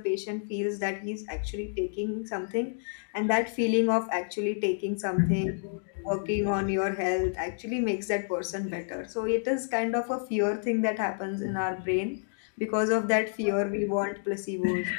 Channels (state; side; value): silent; right; digital silence